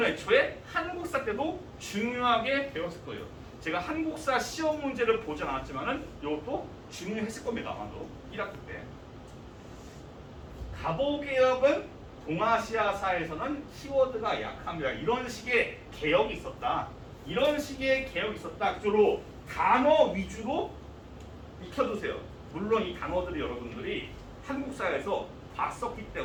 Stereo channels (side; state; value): both; identical; correlation 1.00